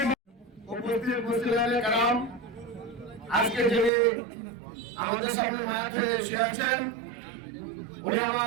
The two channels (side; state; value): left; drops out; at 3.9 s